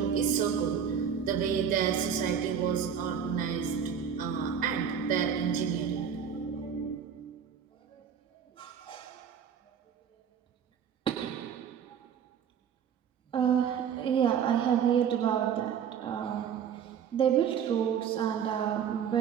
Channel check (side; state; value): left; quieter; 7.8 dB